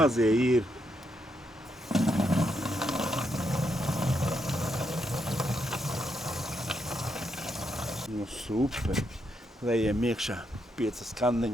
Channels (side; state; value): both; normal; correlation 0.80